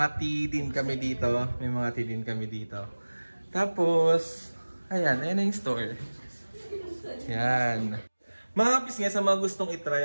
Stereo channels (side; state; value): both; inverted; correlation -1.00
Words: tea din kami dito. Tapos, ayan na yung store. Yan. Mga kapis nga sa mga gustong itry